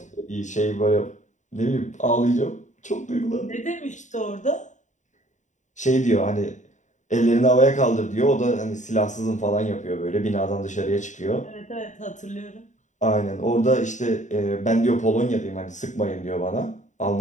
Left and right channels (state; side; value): late; right; 0.35 ms